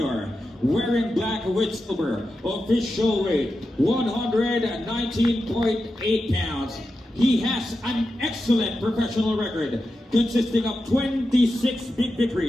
wearing black with silver, official weight 119.8 pounds. He has an excellent professional record consisting of 26 big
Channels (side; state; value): both; normal; correlation 0.90